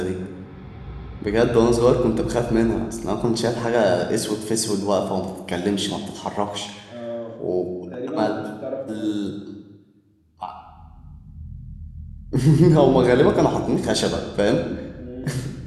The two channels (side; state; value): both; identical; correlation 1.00